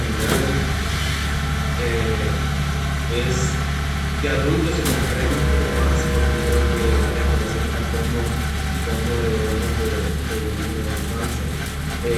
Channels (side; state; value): both; identical; correlation 1.00